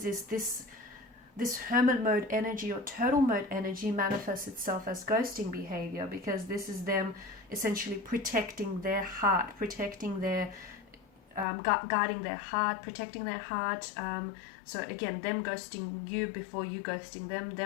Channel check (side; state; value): right; drops out; at 11.5 s